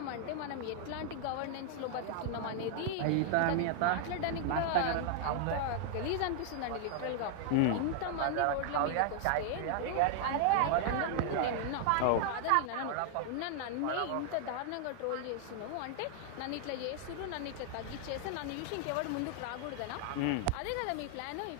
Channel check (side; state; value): both; different; correlation 0.00